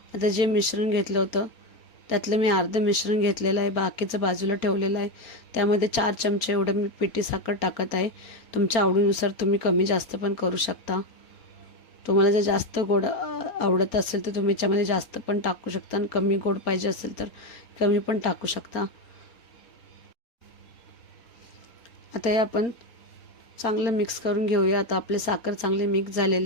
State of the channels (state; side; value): late; right; 4.3 ms